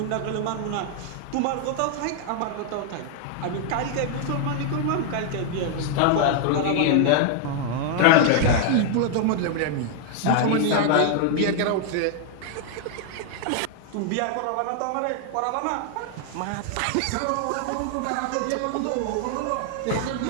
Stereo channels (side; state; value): both; different; correlation 0.00